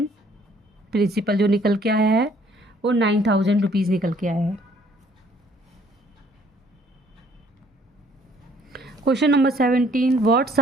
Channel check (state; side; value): normal; both; correlation 0.61